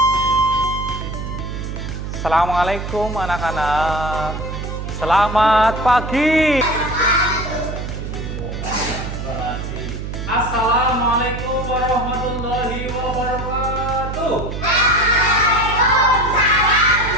Assalamualaikum anak-anak. Selamat pagi. Assalamualaikum warahmatullahi wabarakatuh.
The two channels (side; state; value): right; noise; hum, 6 dB below the sound